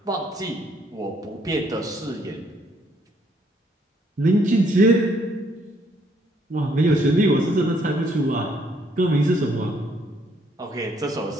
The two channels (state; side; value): normal; both; correlation 0.68